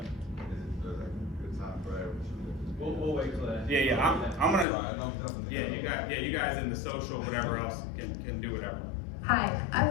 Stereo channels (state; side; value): drops out; right; at 4.7 s